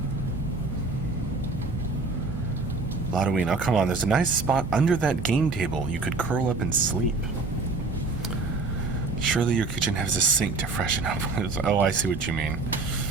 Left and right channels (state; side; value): quieter; left; 3.7 dB